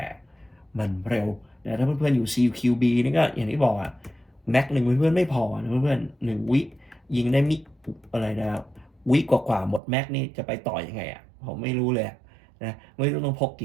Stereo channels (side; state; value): left; drops out; at 9.8 s